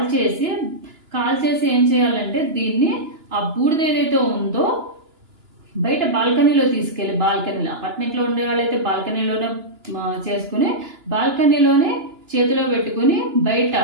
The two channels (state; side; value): late; left; 2.9 ms